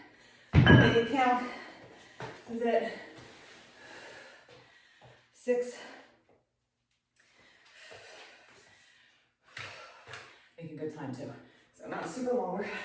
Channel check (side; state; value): both; identical; correlation 1.00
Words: Make it count. This is it. 6. Making good time too. So not super long work.